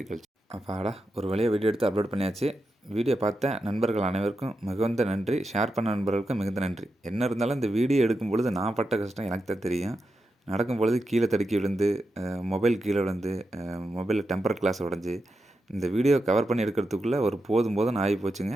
அப்பாடா, ஒரு வழியாக வீடியோ எடுத்து அப்லோட் பண்ணியாச்சு. வீடியோ பார்த்த நண்பர்கள் அனைவருக்கும் மிகுந்த நன்றி. ஷேர் பண்ண நண்பர்களுக்கும் மிகுந்த நன்றி. என்ன இருந்தாலும் இந்த வீடியோ எடுக்கும் பொழுது நான் பட்ட கஷ்டம் எனக்கு தான் தெரியும். நடக்கும் பொழுது கீழே தடுக்கி விழுந்து, மொபைல் கீழே விழுந்து, மொபைலில் டெம்பர் கிளாஸ் உடஞ்சி, இந்த வீடியோ கவர் பண்ணி எடுக்கிறதுக்குள்ளே ஒரு போதும் ஆகி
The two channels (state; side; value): normal; both; correlation 0.88